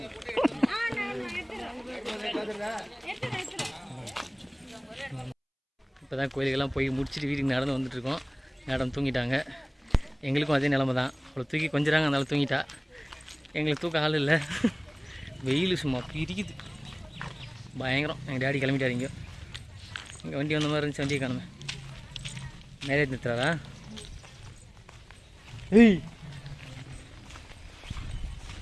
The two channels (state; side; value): identical; both; correlation 1.00